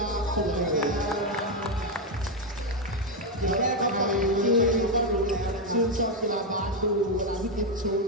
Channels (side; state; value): both; normal; correlation 0.04